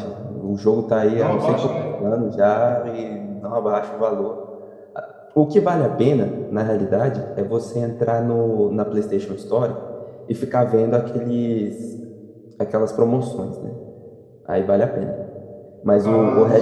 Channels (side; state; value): both; identical; correlation 1.00